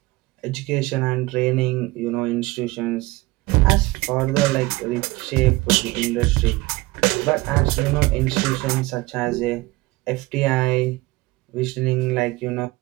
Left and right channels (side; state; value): left; quieter; 21.4 dB